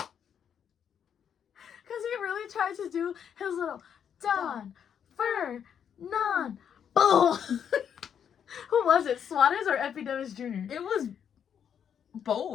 Because he really tried to do his little Don Fernan. Boom. Who was it? Suarez or Epidemis Jr.? It was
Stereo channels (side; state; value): right; quieter; 8.2 dB